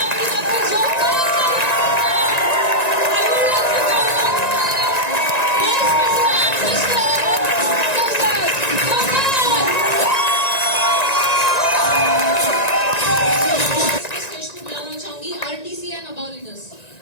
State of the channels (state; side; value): late; right; 1.9 ms